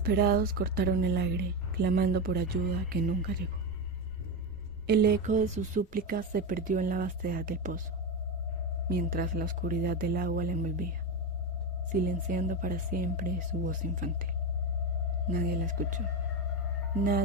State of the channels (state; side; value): normal; both; correlation 0.15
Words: cortaron el aire, clamando por ayuda que nunca llegó. El eco de sus súplicas se perdió en la vastedad del pozo, mientras la oscuridad del agua la envolvía, silenciando para siempre su voz infantil. Nadie la escuchó.